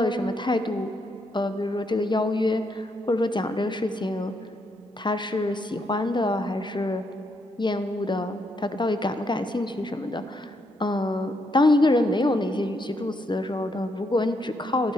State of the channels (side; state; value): both; normal; correlation 0.77